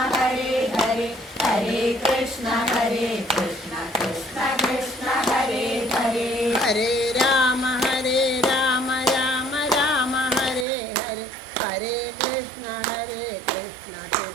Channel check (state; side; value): drops out; left; at 10.7 s